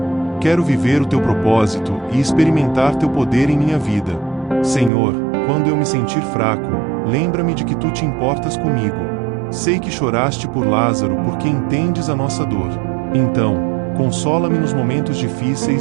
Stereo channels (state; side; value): drops out; left; at 4.9 s